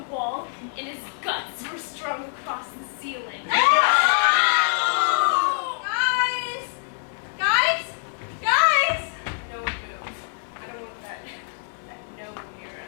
wall, and his guts were strung across the ceiling. Guys! Guys! Guys! No one move. I don't want that gnome near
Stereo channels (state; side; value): silent; right; digital silence